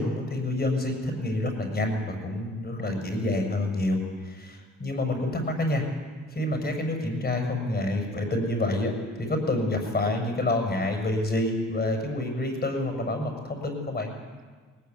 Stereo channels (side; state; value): both; normal; correlation 0.50